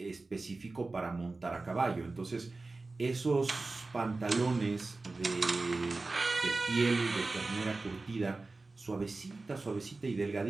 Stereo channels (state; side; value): quieter; left; 3.5 dB